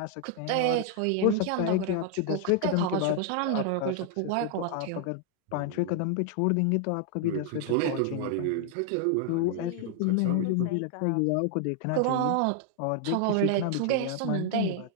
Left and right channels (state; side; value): different; both; correlation 0.00